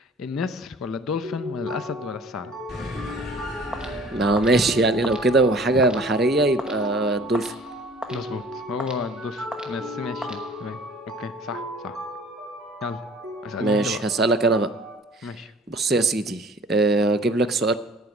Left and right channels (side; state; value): both; normal; correlation 0.50